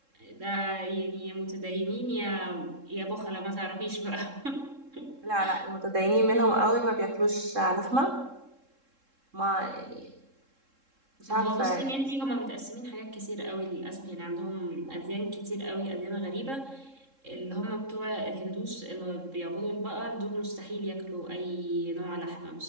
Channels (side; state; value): left; late; 3.7 ms